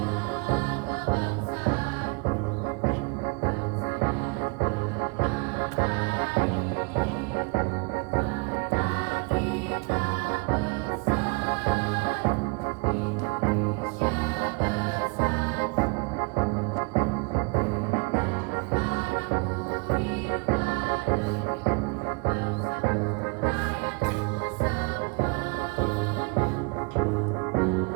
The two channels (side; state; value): left; quieter; 31.7 dB